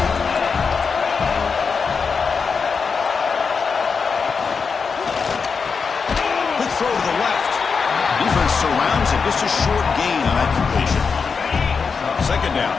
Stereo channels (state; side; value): quieter; right; 5.4 dB